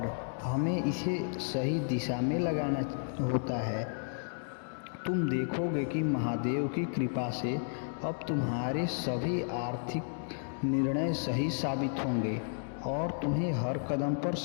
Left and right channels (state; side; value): silent; right; digital silence